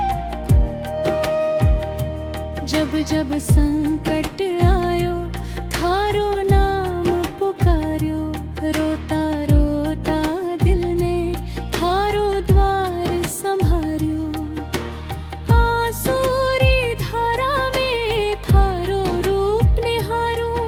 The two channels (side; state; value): both; identical; correlation 1.00